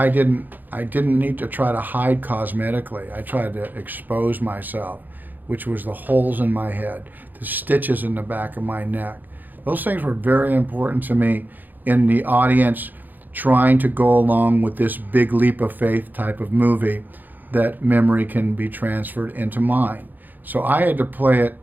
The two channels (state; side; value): late; left; 0.086 ms